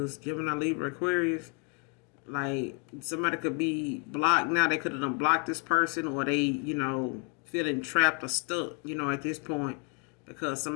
Gemini, Libra, Aquarius. Like, somebody could be blocked now. They could have unblocked this person, or they, feeling trapped or stuck, at this point, because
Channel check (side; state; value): right; quieter; 31.6 dB